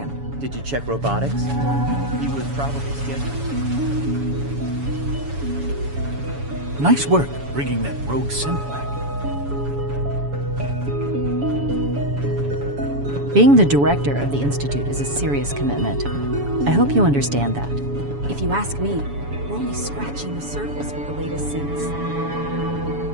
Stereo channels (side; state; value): left; late; 7.1 ms